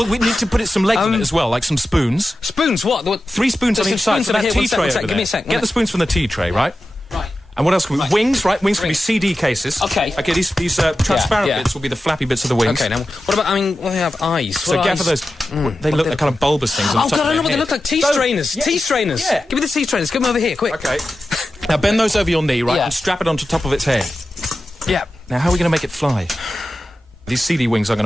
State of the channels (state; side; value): normal; both; correlation 0.93